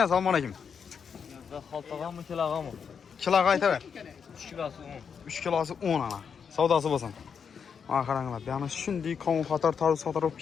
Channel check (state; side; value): quieter; right; 6.7 dB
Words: selamünaleyküm. Haltağa mı kilağa mı? Kila qayta ver. 3 kilosu 10. 3 kilosu 10 ana. Savdası basın. Akarаңlar. Yani şimdi kavun qatar tarı satar olup